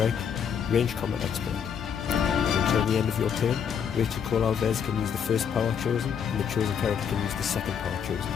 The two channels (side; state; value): right; quieter; 7.6 dB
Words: Range Combat Expert. Until the end of your turn, Rachel Cole Alves can use the first power chosen, and the chosen character can use the second power chosen,